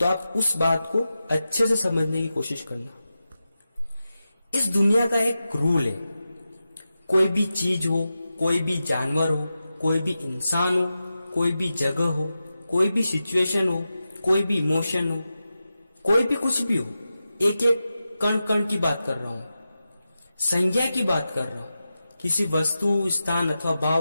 आप उस बात को अच्छे से समझने की कोशिश करना। इस दुनिया का एक रूल है, कोई भी चीज हो, कोई भी जानवर हो, कोई भी इंसान हो, कोई भी जगह हो, कोई भी सिचुएशन हो, कोई भी इमोशन हो, कोई भी कुछ भी हो, एक एक कण कण की बात कर रहा हूं, संज्ञा की बात कर रहा हूं। किसी वस्तु, स्थान अथवा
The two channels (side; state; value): both; inverted; correlation -0.92